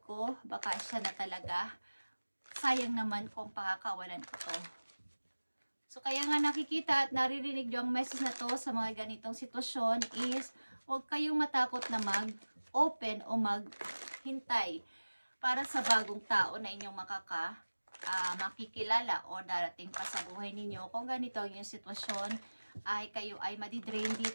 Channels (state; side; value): inverted; both; correlation -1.00